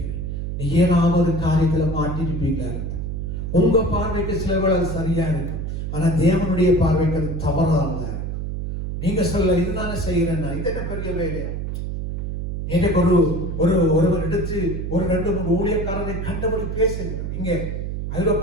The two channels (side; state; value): right; noise; hum, 4 dB below the sound